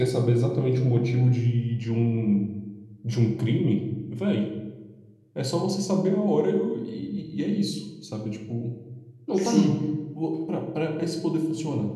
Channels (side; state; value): both; identical; correlation 1.00